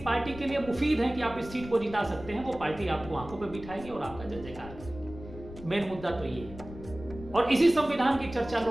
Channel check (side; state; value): left; noise; rumble, 14 dB below the sound